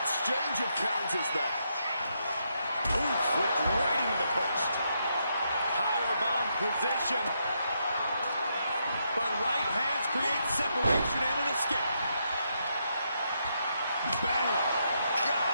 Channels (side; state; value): both; inverted; correlation -0.79